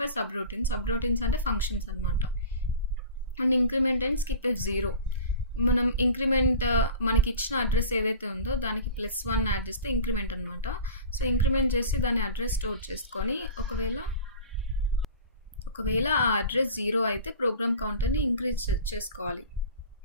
sub routines అంటే ఫంక్షన్స్ అనమాట. And increment and skip if 0. మనం ఇంక్రిమెంట్ మనకి ఇచ్చిన అడ్రస్ ఏదైతే ఉందో దానికి +1 యాడ్ చేస్తే ఇంక్రిమెంట్ అనమాట. సో ఇంక్రిమెంట్ చేసి దాని అడ్రస్ స్టోర్ చేసుకొని ఒకవేళ ఆ అడ్రస్ 0 అయితే ప్రోగ్రామ్ కౌంటర్ని ఇంక్రీజ్ చేసుకోవాలి.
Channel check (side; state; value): both; inverted; correlation -0.38